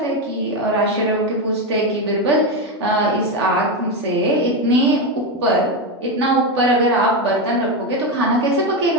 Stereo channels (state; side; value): normal; both; correlation 0.11